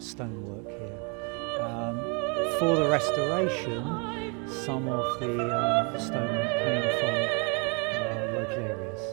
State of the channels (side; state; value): left; quieter; 34.4 dB